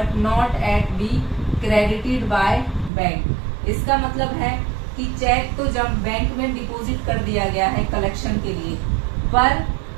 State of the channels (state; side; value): drops out; left; at 2.9 s